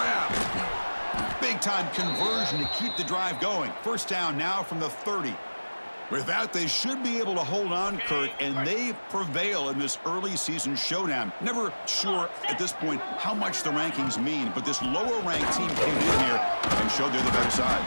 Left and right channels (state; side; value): inverted; both; correlation -1.00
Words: Big-time conversion to keep the drive going. First down now from the 30. With that, they should be able to hold on, Kurt, and they prevail in this early season showdown. Never sure at this point how much the rankings mean, but this lower-ranked team came in here and showed they're the better side.